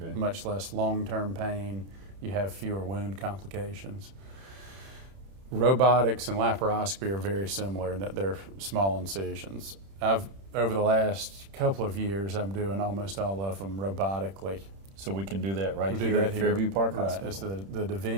Okay. much less long-term pain. You have fewer wound complications. Robotics and laparoscopy are very similar in that they're small incisions. Over the last couple of years, I'm doing almost all of them robotically. So we can do that right We do here that at Fairview Park Right. Hospital? It's the Da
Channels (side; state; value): left; late; 31 ms